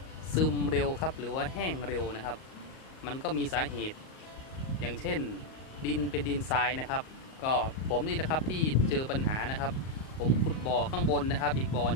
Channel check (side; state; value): right; late; 38 ms